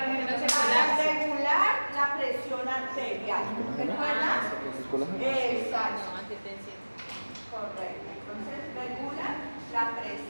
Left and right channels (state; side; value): inverted; both; correlation -1.00